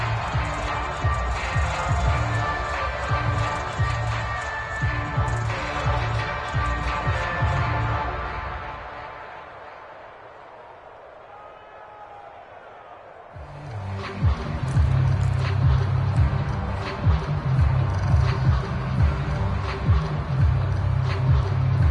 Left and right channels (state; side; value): identical; both; correlation 1.00